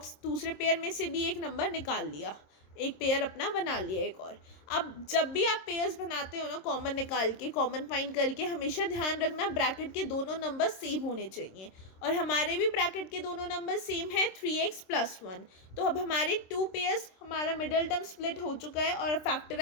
पेयर में से भी एक नंबर निकाल लिया, एक पेयर अपना बना लिया एक और। अब जब भी आप पेयर्स बनाते हो ना, कॉमन निकाल के, कॉमन फाइंड करके, हमेशा ध्यान रखना ब्रैकेट के दोनों नंबर सेम होने चाहिए, और हमारे भी ब्रैकेट के दोनों नंबर सेम है 3x + 1। तो अब हमारे 2 पेयर्स, हमारा मिडल टर्म स्प्लिट हो चुका है और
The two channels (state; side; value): late; right; 26 ms